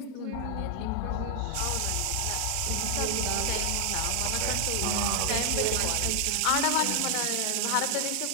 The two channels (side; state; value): both; different; correlation 0.00